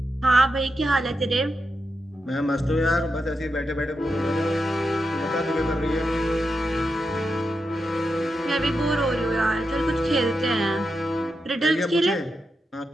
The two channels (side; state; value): both; normal; correlation 0.87